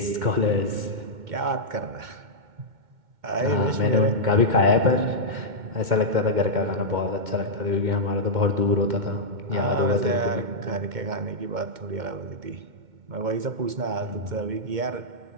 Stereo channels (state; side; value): late; left; 2.1 ms